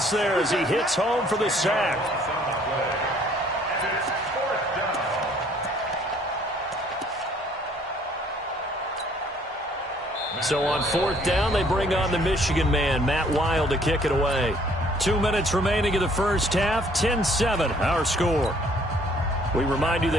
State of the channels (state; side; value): normal; both; correlation 0.61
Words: there as he hits home for the sack. So on 4th down, they bring on the Michigan man, Matt Wild, to kick it away. 2 minutes remaining in the 1st half, 10-7, our score. We remind you